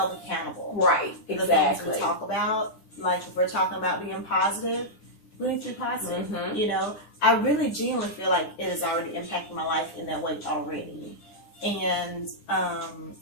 accountable. Right. Exactly. The things we talk about, like if we're talking about being positive, we need to be positive. I really genuinely feel like it has already impacted my life in that way already. And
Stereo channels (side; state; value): right; late; 9.9 ms